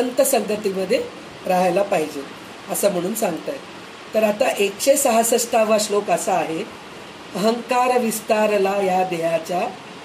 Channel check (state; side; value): identical; both; correlation 1.00